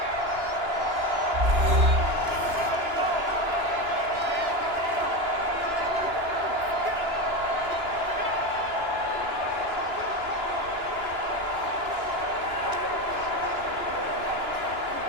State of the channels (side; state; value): left; late; 2.9 ms